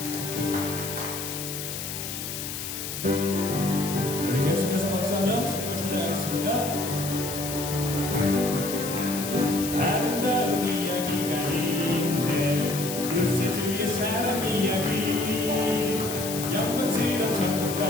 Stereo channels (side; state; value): left; noise; hiss, 6 dB below the sound